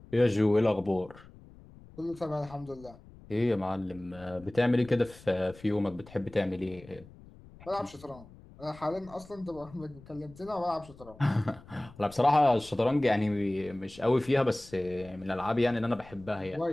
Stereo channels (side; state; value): left; noise; rumble, 21 dB below the sound